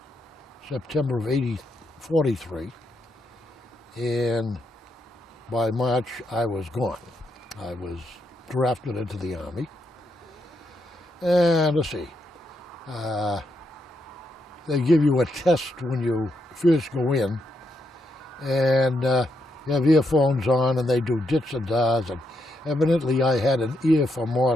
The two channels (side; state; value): both; normal; correlation 0.81